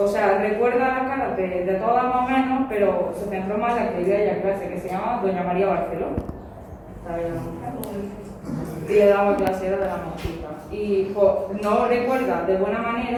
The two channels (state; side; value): identical; both; correlation 1.00